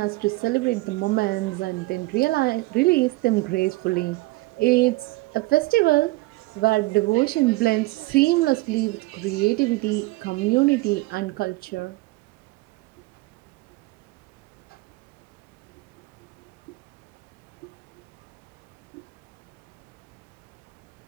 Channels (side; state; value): left; quieter; 21.0 dB